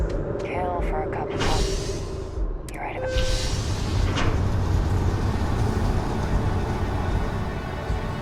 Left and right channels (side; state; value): both; identical; correlation 1.00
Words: you? Kill for a cup of coffee. You're right about